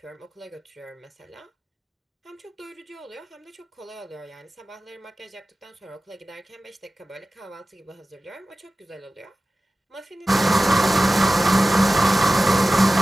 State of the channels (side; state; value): both; normal; correlation 0.96